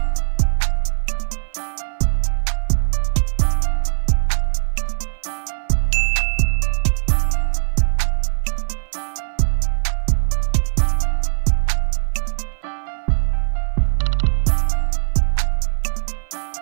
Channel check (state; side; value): silent; left; 58 dB below the other